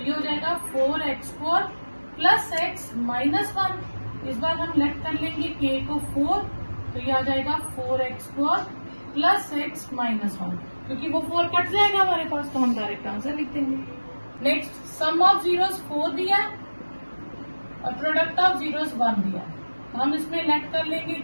ये हो जाएगा 4x² + x - 1 इस बार हम लेट कर लेंगे k को 4 तो ये आ जाएगा 4x² + x - 1 क्योंकि वो 4 कट जाएगा हमारे पास तो हम डायरेक्ट आंसर लिख देंगे। नेक्स्ट सम ऑफ जीरोस 4 दिया और प्रोडक्ट ऑफ जीरोस 1 दिया तो हम इसमें लेट कर लेंगे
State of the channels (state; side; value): inverted; both; correlation -1.00